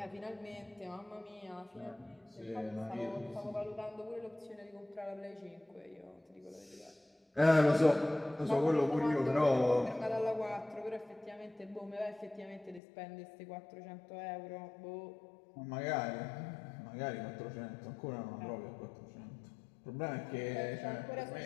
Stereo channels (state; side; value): drops out; right; at 12.8 s